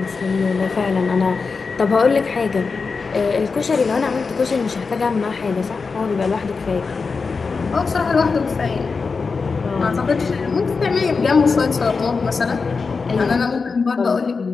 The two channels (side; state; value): right; quieter; 4.7 dB